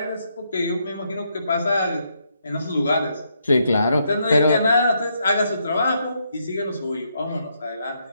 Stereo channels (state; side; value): inverted; both; correlation -0.77